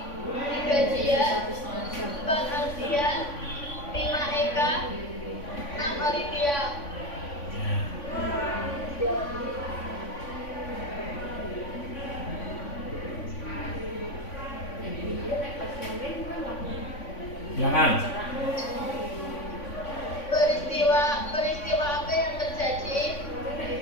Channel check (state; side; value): late; right; 3.5 ms